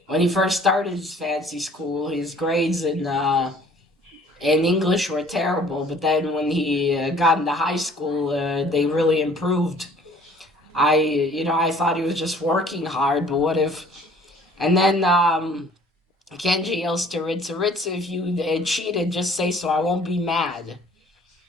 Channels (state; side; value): normal; both; correlation 0.54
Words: when he first started his fancy school, his grades in English were terrible. But then when he got into high school, they really improved. I thought he was just working hard, but what if? And then Kenji yells to Ritsu, "Ritsu, if you cheated, just say so. I won't be mad."